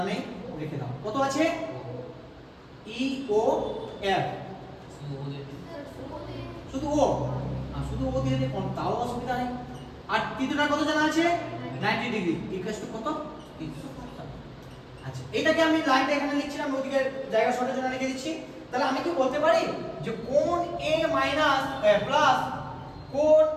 নেই, লিখে দাও। কত আছে? ই ও এফ। শুধু ও, শুধু ও দিয়ে দিই, তাও অসুবিধা নেই। আর তৃতীয়টা কত জানা আছে? 90 ডিগ্রি ইকুয়াল টু কত? 360। আচ্ছা, এটাকে আমি লাইনটা এখানে লিখছিলাম, ওদিকে জায়গা শর্টের জন্য লিখে দিচ্ছি। তাহলে আমি কি বলতে পারি যে কোণ এ মাইনাস প্লাস কোণ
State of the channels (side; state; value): both; identical; correlation 1.00